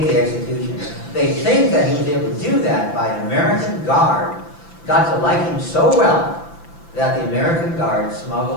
the execution. They think that he was able to do that by an American guard, got to like him so well that the American guard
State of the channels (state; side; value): late; right; 5.9 ms